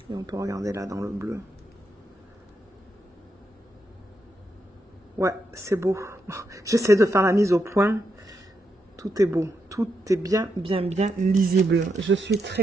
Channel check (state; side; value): normal; both; correlation 0.82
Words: Et on peut regarder là dans le bleu. Ouais, c'est beau. J'essaie de faire la mise au point. Tout est beau. Tout est bien lisible. Je suis